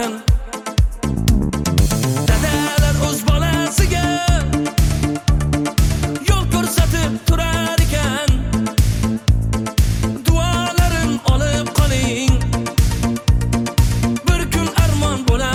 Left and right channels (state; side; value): identical; both; correlation 1.00